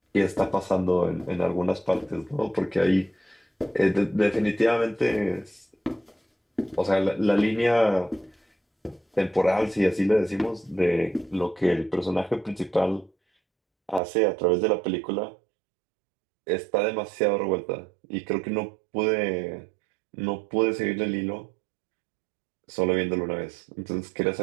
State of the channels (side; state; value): left; drops out; at 14.0 s